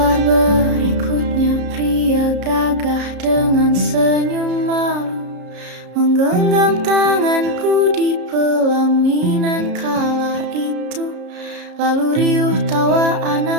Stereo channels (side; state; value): left; late; 33 ms